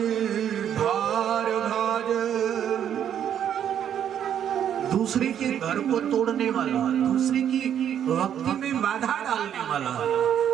भार भाज, दूसरे के घर को तोड़ने वाला, दूसरे की भक्ति में बाधा डालने वाला।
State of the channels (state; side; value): quieter; left; 9.5 dB